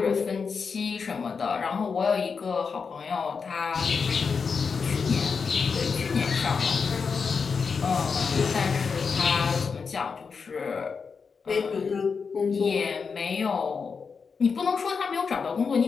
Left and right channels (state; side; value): quieter; right; 5.4 dB